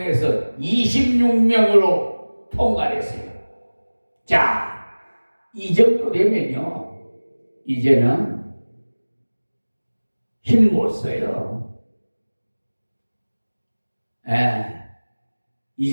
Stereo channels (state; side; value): inverted; both; correlation -1.00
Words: 26명으로 통과했어요. 자, 이 정도 되면요, 이제는 힘 못 써요.